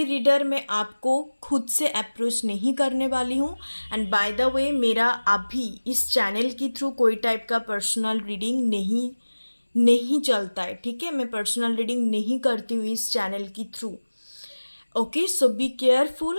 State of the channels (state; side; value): inverted; both; correlation -1.00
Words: रीडर मैं आपको खुद से अप्रोच नहीं करने वाली हूँ। एंड बाय द वे, मेरा अभी इस चैनल के थ्रू कोई टाइप का पर्सनल रीडिंग नहीं चलता है, ठीक है? मैं पर्सनल रीडिंग नहीं करती हूँ इस चैनल के through. Okay, so be